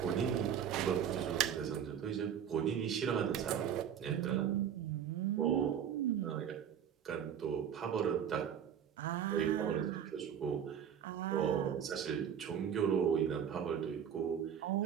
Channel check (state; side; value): quieter; left; 8.8 dB